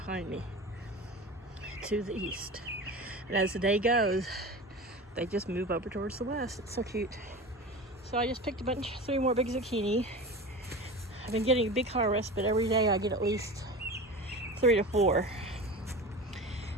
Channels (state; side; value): normal; both; correlation 0.31